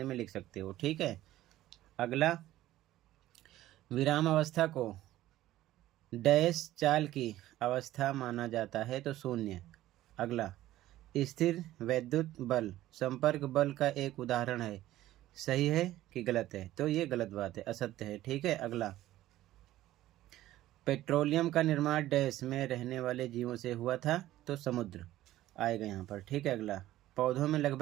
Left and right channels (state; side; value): quieter; left; 14.8 dB